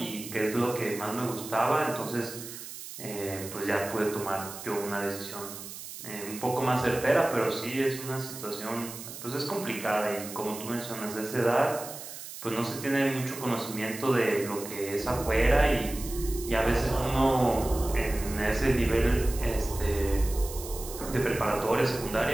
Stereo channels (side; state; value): right; noise; hiss, 11 dB below the sound